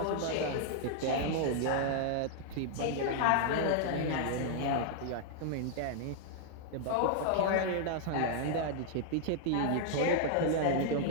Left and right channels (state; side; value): different; both; correlation -0.01